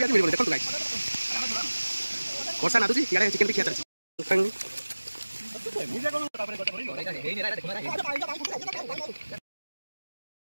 ଆଜି ମିଳିବନି। ଦେଖନ୍ତୁ ଗାଇସ୍ ବର୍ଷା ନାଦୁଛି ଇଆଡେ ଚିକେନ ବି ଖିଆ ଚାଲିଛି।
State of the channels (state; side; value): inverted; both; correlation -1.00